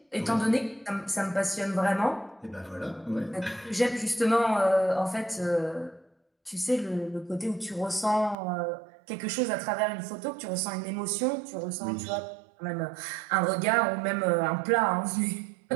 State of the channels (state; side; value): drops out; left; at 8.3 s